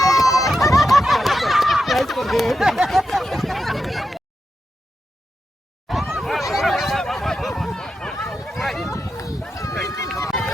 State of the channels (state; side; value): normal; both; correlation 0.88